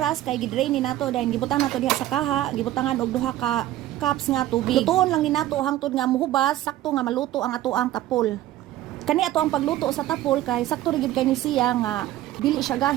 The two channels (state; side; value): quieter; left; 14.2 dB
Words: kay gidrain ni nato dahil gibutang nato diha sa kaha, gibutangan og 2 ka cups nga tubig. Lutuon lang ni nato hangtod nga muhubas, sakto nga maluto ang ato ang tapol. Kani ato ang pagluto sa tapol kay sakto ri gyud kay ni siya nga dili siya